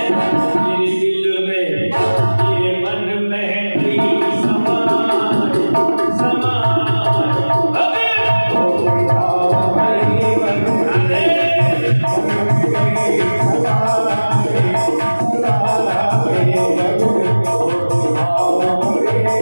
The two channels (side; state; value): both; inverted; correlation -1.00